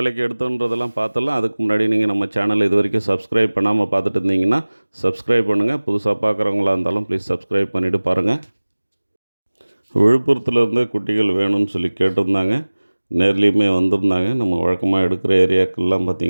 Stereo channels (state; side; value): inverted; both; correlation -1.00